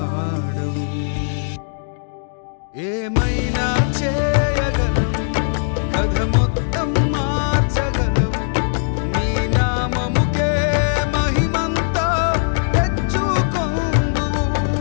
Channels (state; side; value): silent; right; digital silence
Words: ఏమైనా చేయగలవు, కథ మొత్తం మార్చగలవు, నీ నామముకే మహిమంతా తెచ్చుకొందువు.